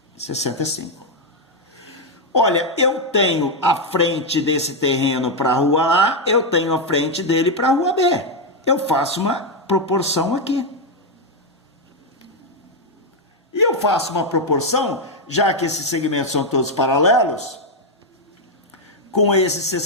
65. Olha, eu tenho a frente desse terreno para a rua A, eu tenho a frente dele para a rua B. Eu faço uma proporção aqui. E eu faço uma proporção, já que esses segmentos são todos paralelos, com esse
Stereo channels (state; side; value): normal; both; correlation 0.02